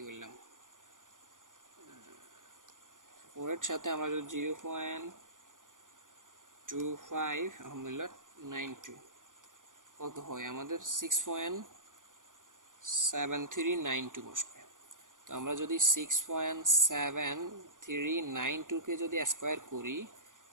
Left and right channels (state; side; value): late; left; 0.88 ms